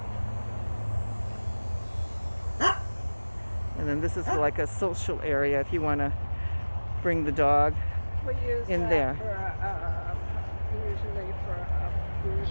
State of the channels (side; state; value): both; inverted; correlation -1.00